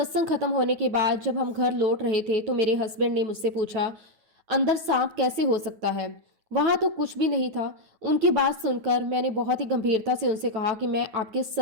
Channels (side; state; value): left; late; 9.4 ms